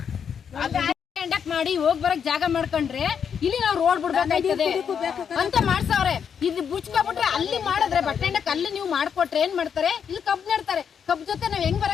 ಕಂಡಕ್ಟ್ ಮಾಡಿ ಹೋಗ್ ಬರಕ್ ಜಾಗ ಮಾಡ್ಕೊಂಡ್ರೆ ಇಲ್ಲಿ ನಾವು ರೋಡ್ ಬಿಡ್ಬೇಕಾಯ್ತದೆ ಅಂತ ಮಾಡ್ಸವ್ರೆ. ಇಲ್ಲಿ ಬುಚ್ಕೊಬಿಟ್ರೆ ಅಲ್ಲಿ ಮಾಡಿದ್ರೆ ಬಟ್ಟೆ ಅಂಡಕ್ ಅಲ್ಲಿ ನೀವು ಮಾಡ್ಕೊಟ್ರೆ ಏನ್ ಮಾಡ್ತಾರೆ, ಇಲ್ಲಿ ಕಬ್ ನೆಡ್ತಾರೆ. ಕಬ್ ಜೊತೆ ನಾವ್ ಹೆಂಗ್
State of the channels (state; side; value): quieter; right; 7.4 dB